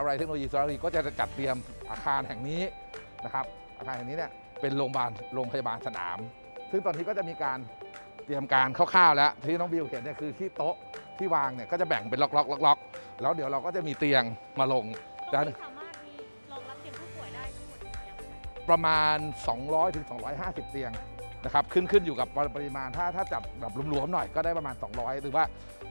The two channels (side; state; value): both; inverted; correlation -1.00